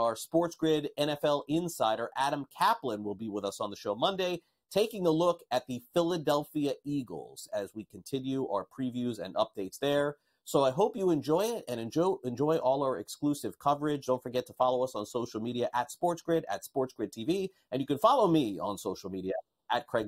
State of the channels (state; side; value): identical; both; correlation 1.00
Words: SportsGrid NFL insider, Adam Kaplan, will be with us on the show Monday, taking a look at the Philadelphia Eagles as we continue our previews and updates there. So I hope you enjoy it and enjoy all our exclusive coverage. Don't forget to follow us on social media at SportsGrid, at SportsGrid TV. And you can follow me on social media at